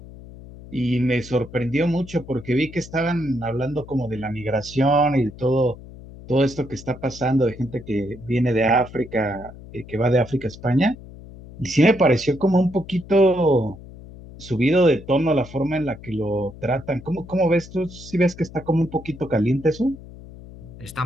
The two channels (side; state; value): left; noise; hum, 17 dB below the sound